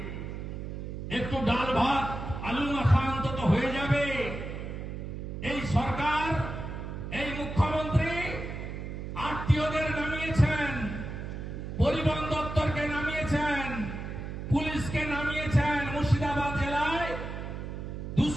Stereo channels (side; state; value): right; noise; hum, 7 dB below the sound